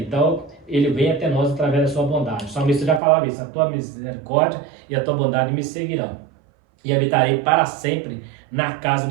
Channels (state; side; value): drops out; left; at 3.0 s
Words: Então, ele vem até nós através da sua bondade. O salmista já falava isso: a tua misericórdia e a tua bondade me seguirão. E habitarei para sempre na casa